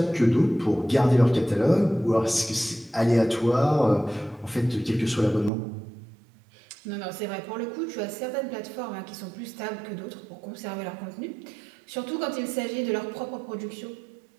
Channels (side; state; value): left; drops out; at 5.5 s